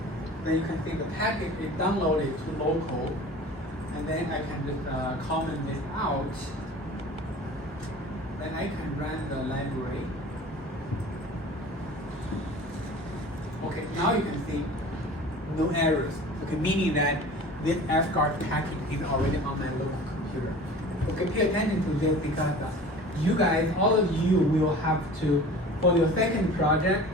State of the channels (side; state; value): both; normal; correlation 0.41